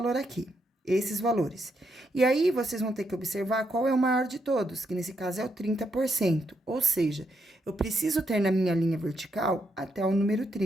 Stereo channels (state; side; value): normal; both; correlation 0.79